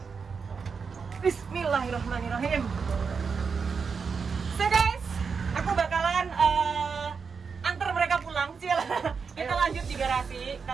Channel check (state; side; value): quieter; left; 5.6 dB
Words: Bismillahirrahmanirrahim. So guys, aku bakalan antar mereka pulang. Kita lanjut di garasi,